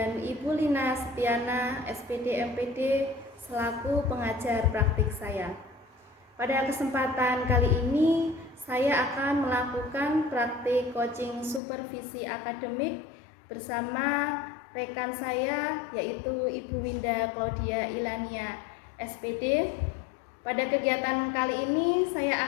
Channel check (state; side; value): drops out; right; at 11.6 s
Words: Ibu Lina Setiana SPD MPD selaku pengajar praktik saya. Pada kesempatan kali ini saya akan melakukan praktik coaching supervisi akademik bersama rekan saya yaitu Ibu Winda Claudia Ilania SPD. Pada kegiatan kali ini